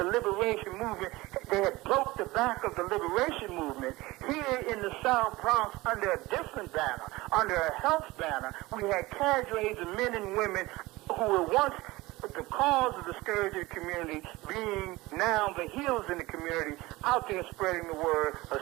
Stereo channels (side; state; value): left; quieter; 20.4 dB